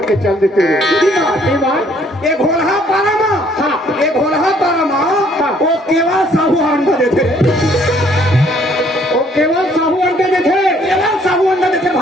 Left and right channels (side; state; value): both; normal; correlation 0.63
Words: चल देते रे बात एक भोला पारमा एक भोला पारमा वो केवल साहू अंडा देते वो केवल साहू अंडा देते केवल साहू अंडा देते